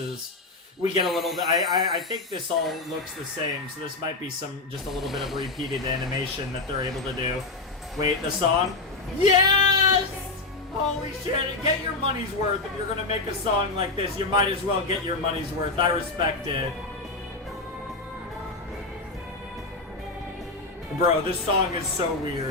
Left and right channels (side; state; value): right; quieter; 3.4 dB